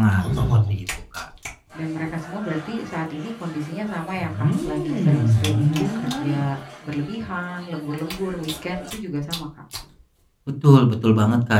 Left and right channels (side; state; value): both; identical; correlation 1.00